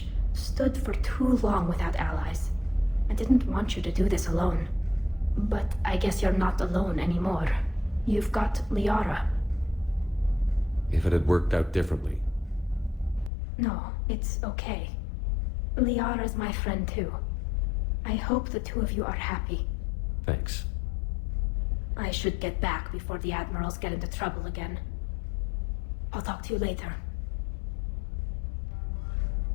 stood for too long without allies. I didn't want you to do this alone. But I guess you're not alone anymore. You've got Liara. if it had worked out differently. No, it's okay. Liara's my friend too. I hope the two of you are happy. Thanks. I should get back before the admirals get into trouble again. I'll talk to you later.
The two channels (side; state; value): right; drops out; at 13.3 s